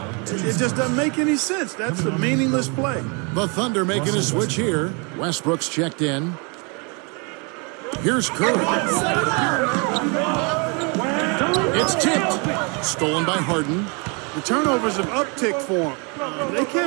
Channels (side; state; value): left; quieter; 33.1 dB